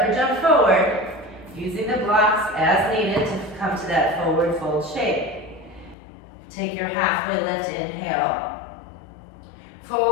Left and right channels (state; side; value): drops out; right; at 6.0 s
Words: or jump forward. Using the blocks as needed to come to that forward fold shape. Take your halfway lift, inhale.